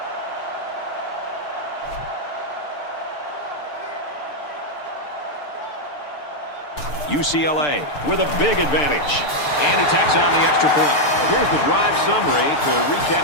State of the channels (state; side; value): late; right; 6.7 ms